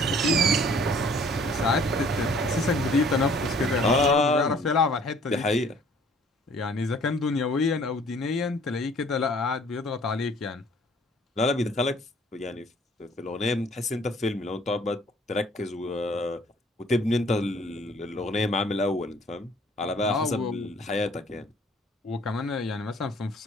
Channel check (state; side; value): normal; both; correlation 0.56